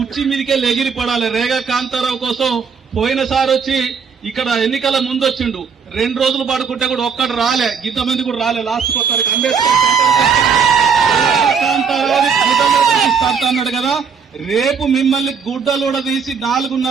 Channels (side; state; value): left; quieter; 6.1 dB